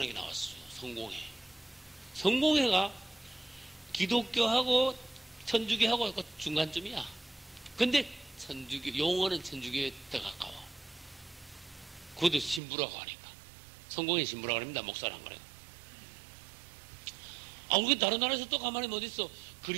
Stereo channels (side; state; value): left; drops out; at 12.6 s